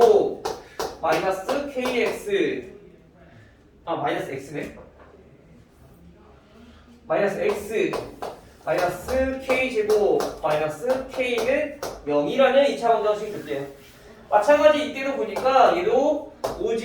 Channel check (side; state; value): both; identical; correlation 1.00